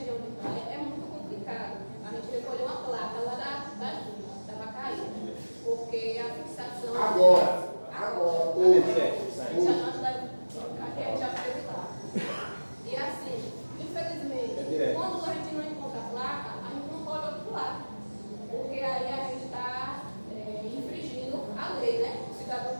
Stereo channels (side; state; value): both; inverted; correlation -1.00